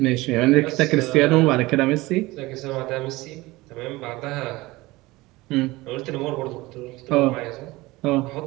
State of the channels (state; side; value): quieter; left; 20.4 dB